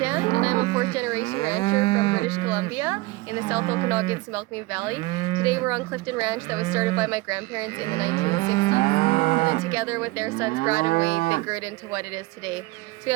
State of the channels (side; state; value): left; quieter; 21.6 dB